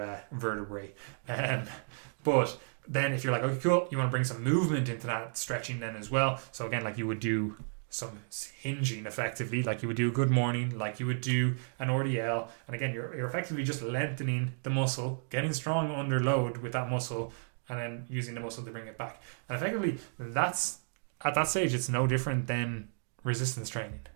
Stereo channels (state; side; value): silent; left; digital silence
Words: vertebrae. But then if you're like, okay, cool, you want to bring some movement into that stretching then as well. So again, like you would do some hinging effectively, like you would do a good morning, like you would do an RDL. And again, you're effectively just lengthening the muscle, getting strong under load with that muscle, and then using the muscle to bring it back. And effectively, that's, at that stage, it's no different than resistance training.